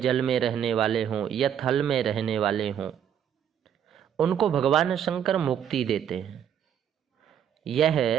में रहने वाले हों या थल में रहने वाले हों, उनको भगवान शंकर मुक्ति देते हैं। यह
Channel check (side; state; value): left; quieter; 9.0 dB